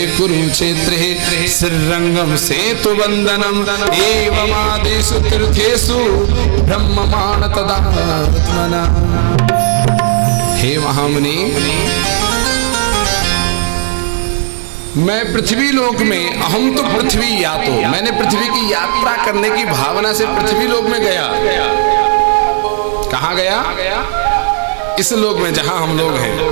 कुरुक्षेत्रे श्रीरंगम सेतु वंदनम एवमादिषु तीर्थेषु ब्रह्ममाण तदात्मना। हे महामुनि, मैं पृथ्वी लोक में, अहम तो पृथ्वी यातो, मैंने पृथ्वी की यात्रा करने की भावना से पृथ्वी लोक में गया। कहाँ गया? इस लोक में जहां हम लोग हैं।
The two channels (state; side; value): silent; left; digital silence